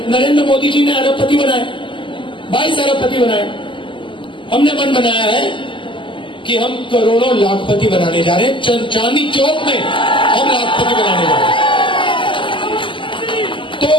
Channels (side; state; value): right; late; 0.25 ms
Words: नरेंद्र मोदी जी ने अरबपति बनाए, 22 अरबपति बनाए। हमने मन बनाया है कि हम करोड़ों लाखपति बनाने जा रहे हैं। चांदनी चौक में हम लाखपति बनाने जा रहे हैं। तो